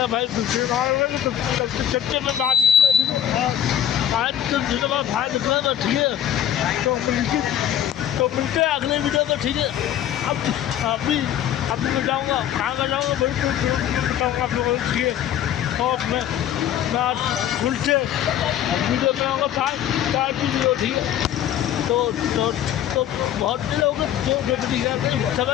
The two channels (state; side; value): quieter; right; 10.6 dB